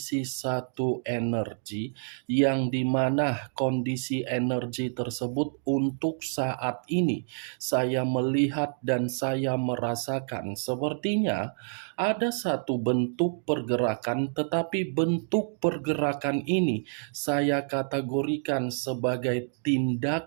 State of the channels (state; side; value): silent; left; digital silence